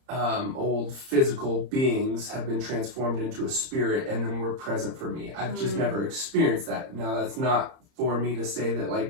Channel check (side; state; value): left; late; 30 ms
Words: old physical beings have been transformed into a spirit and then were present for me. I've just never experienced that. Now that's not for me to say that